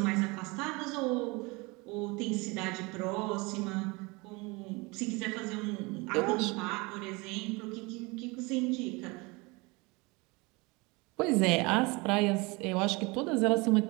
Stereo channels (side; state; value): left; quieter; 26.1 dB